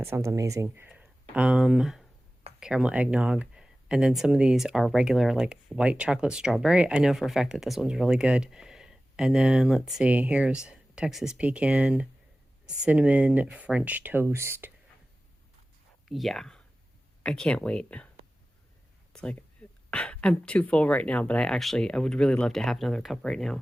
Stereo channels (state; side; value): normal; both; correlation 0.96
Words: sounds amazing. Caramel eggnog. And then some of these are regular, like white chocolate strawberry. I know for a fact that this one's really good. And then let's see, here's Texas pecan, cinnamon French toast. Yeah, I can't wait. It's like, I'm too full right now, but I would really love to have another cup right now.